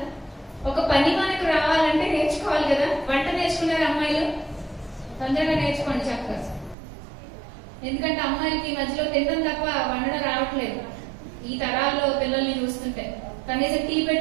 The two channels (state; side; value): drops out; left; at 6.8 s